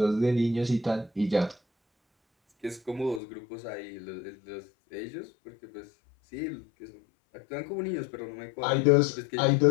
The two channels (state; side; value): drops out; right; at 3.2 s